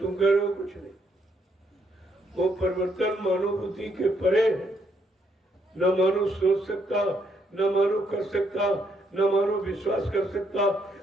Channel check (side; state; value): both; normal; correlation 0.73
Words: कह रहे हो कुछ नहीं, वो परिवर्तन मानव बुद्धि के परे है। न मानव सोच सकता, न मानव कर सकता, न मानो विश्वास कर सकता,